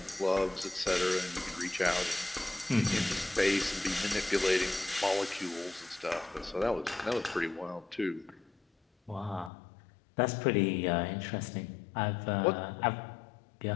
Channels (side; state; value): right; drops out; at 9.5 s